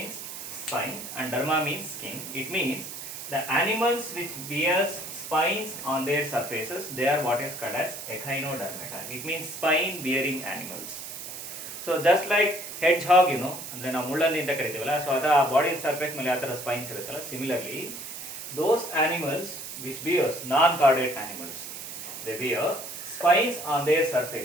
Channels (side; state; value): right; noise; hiss, 9 dB below the sound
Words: spine and derma means skin. It means the animals which bears spines on their surfaces, they are what is called as Echinodermata. It means spine bearing animals. So just like hedgehog, ಅಂದ್ರೆ ನಾವು ಮುಳ್ಳಂದಿ ಅಂತ ಕರಿತೀವಲ್ಲ, so ಅದರ body surface ಮೇಲೆ ಯಾವ ಥರ spines ಇರುತ್ತಲ್ಲ, similarly those animals which bears non-chordate animals, they bear spines on their